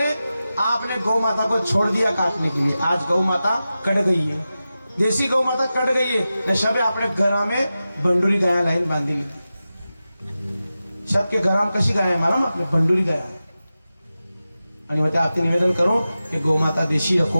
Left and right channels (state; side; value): inverted; both; correlation -0.93